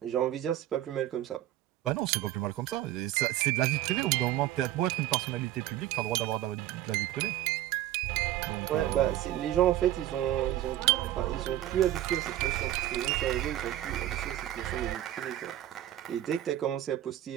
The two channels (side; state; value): left; quieter; 13.4 dB